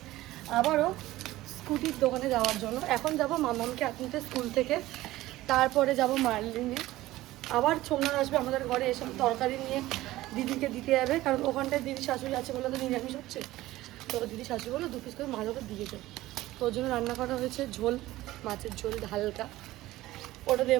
আবারও স্কুটির দোকানে যাওয়ার জন্য। এখন যাব মামামকে আনতে স্কুল থেকে, তারপরে যাব মার্লিনে। আবার সোমনাথ আসবে আমাদের ঘরে, এসব তরকারি নিয়ে দিদিকে দিতে যাবে, কারণ ওখানটায় দিদি শাশুড়ি আছে বলে তো নিরামিষ হচ্ছে। তো দিদি শাশুড়ি বলে 2 পিস করে মাছ ওকে দিয়ে যাবে। তো ওর জন্য রান্না করা হয়েছে ঝোল, মাছের ঝোল হালকা, ওটা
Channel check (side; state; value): left; quieter; 16.7 dB